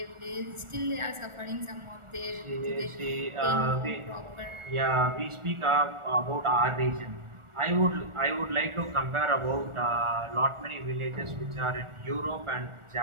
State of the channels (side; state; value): left; late; 1.4 ms